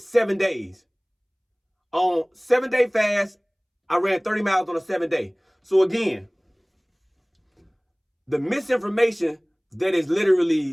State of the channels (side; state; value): both; identical; correlation 1.00